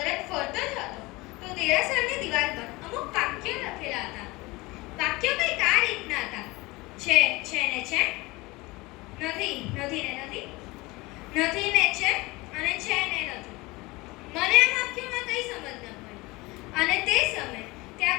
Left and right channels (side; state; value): right; quieter; 22.4 dB